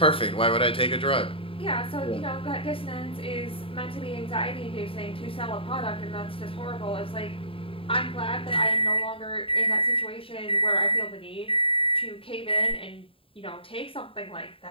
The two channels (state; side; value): late; right; 0.26 ms